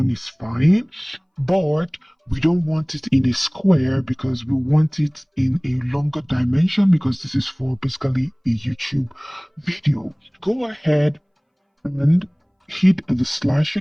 is fine. But we don't want it in a square because we want it in a longer dimension because this is for basically a YouTube video. Go ahead and hit the slash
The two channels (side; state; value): both; identical; correlation 1.00